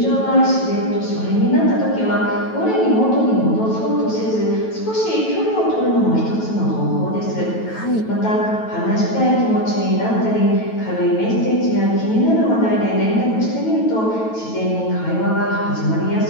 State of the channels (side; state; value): right; late; 9.2 ms